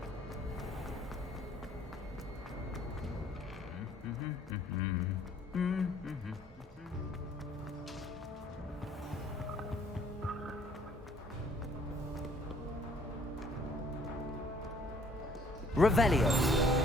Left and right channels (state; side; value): normal; both; correlation 0.60